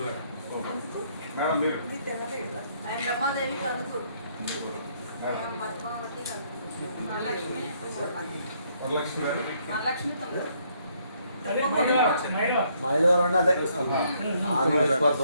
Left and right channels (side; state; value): both; inverted; correlation -0.69